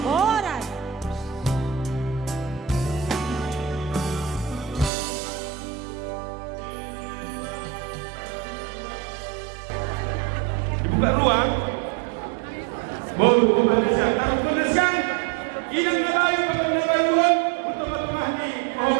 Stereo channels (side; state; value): left; drops out; at 4.9 s